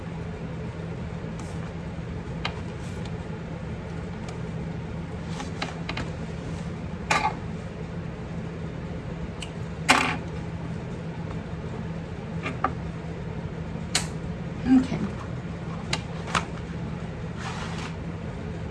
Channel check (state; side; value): identical; both; correlation 1.00